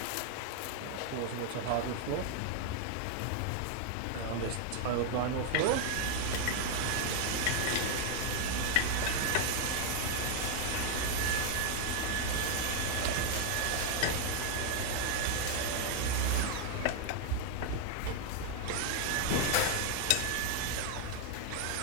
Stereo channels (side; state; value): both; different; correlation 0.00